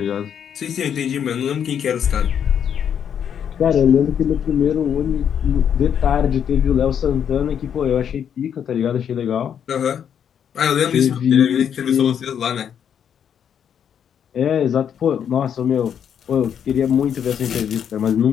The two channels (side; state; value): right; quieter; 8.4 dB